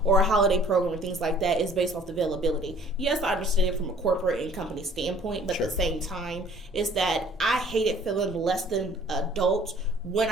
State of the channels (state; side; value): normal; both; correlation 0.54